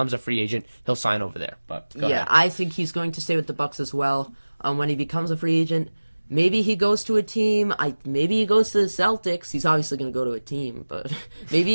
a free agent, he'll sign over there. But go ahead. I think he's going to stay with the Bucks as well. When he becomes a free agent, maybe he goes to a team. Maybe he goes to the Celtics. He's obviously going to go to a team, but maybe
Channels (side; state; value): both; inverted; correlation -1.00